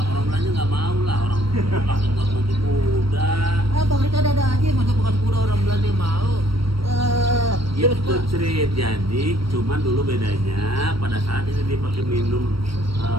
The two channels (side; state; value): left; late; 0.75 ms